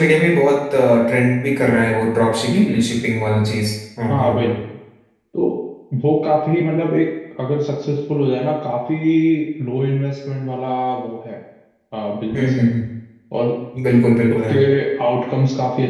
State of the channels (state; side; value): identical; both; correlation 1.00